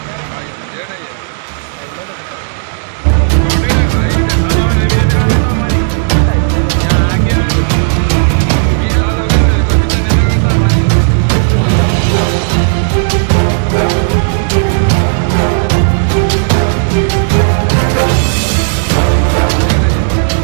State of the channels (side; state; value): left; silent; digital silence